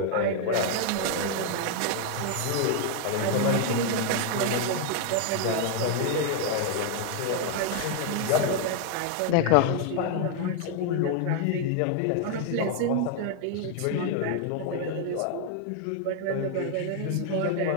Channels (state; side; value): different; both; correlation 0.00